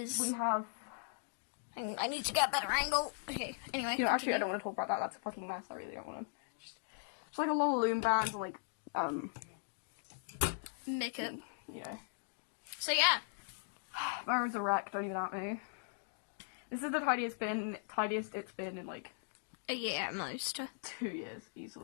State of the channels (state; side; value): silent; right; digital silence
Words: we have. Hang on, I need to get a better angle. Okay. Anyway. You know, actually, I don't want to talk about that. That's a fucking mess. I really don't want to. It's like a lot of loom bands and like Makeup. Yeah. So yeah. My room's a wreck. Don't even at me. This is the tidiest it's been in like A year at most. 2 years